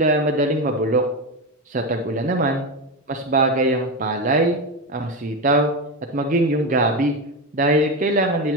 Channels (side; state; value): both; normal; correlation 0.16